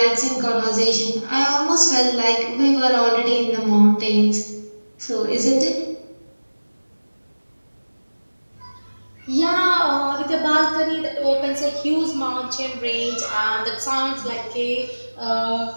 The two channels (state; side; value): inverted; both; correlation -1.00